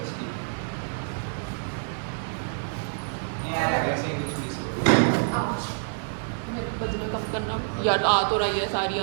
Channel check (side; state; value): left; silent; digital silence